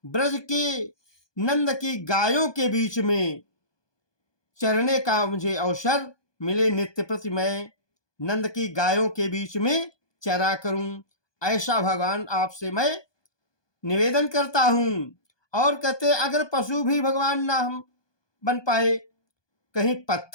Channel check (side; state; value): right; late; 1.2 ms